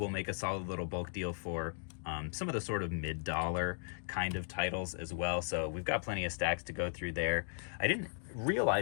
make a solid little bulk deal for some of the sort of mid-dollar kind of titles as well. So we've got plenty of stacks to go through there. I didn't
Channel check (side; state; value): right; silent; digital silence